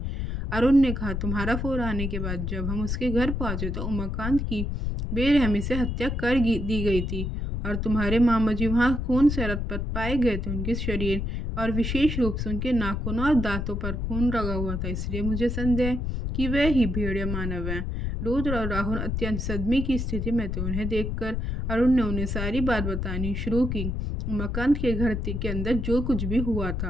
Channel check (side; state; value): left; noise; rumble, 2 dB below the sound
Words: अरुण ने कहा, तुम्हारा फोन आने के बाद जब हम उसके घर पहुंचे तो उमाकांत की बेरहमी से हत्या कर दी गई थी और तुम्हारे मामा जी वहाँ खून से लथपथ पाए गए थे। उनके शरीर और विशेष रूप से उनके नाखूनों और दांतों पर खून लगा हुआ था, इसलिए मुझे संदेह कि वे ही भेड़िया मानव हैं। रुद्र और राहुल अत्यंत सदमे की स्थिति में थे। उन्हें देखकर अरुण ने उन्हें सारी बात बतानी शुरू की, उमाकांत के घर के अंदर जो कुछ भी हुआ